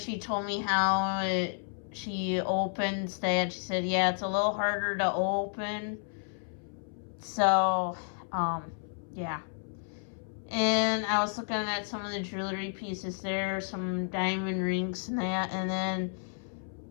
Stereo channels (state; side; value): silent; right; 57 dB below the other